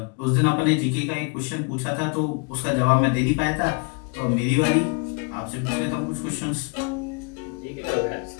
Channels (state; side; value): quieter; right; 34.1 dB